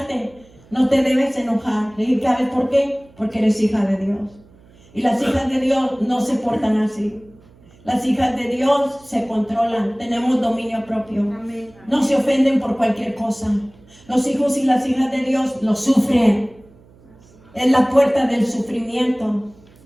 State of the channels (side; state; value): right; noise; hum, 27 dB below the sound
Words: no te debes enojar. Le dije, ¿sabes por qué? Porque eres hija de Dios. Y las hijas de Dios no se portan así. Las hijas de Dios se controlan, tenemos dominio propio. Amén. No se ofenden por cualquier cosa. Los hijos y las hijas de Dios lo sufren. Es la puerta del sufrimiento.